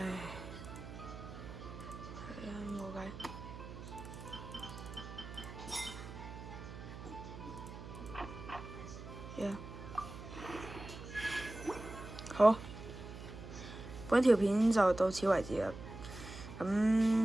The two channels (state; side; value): noise; right; hum, 11 dB below the sound